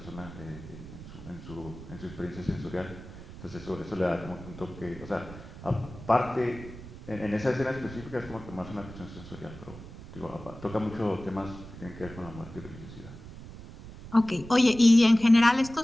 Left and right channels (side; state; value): right; noise; rumble, 14 dB below the sound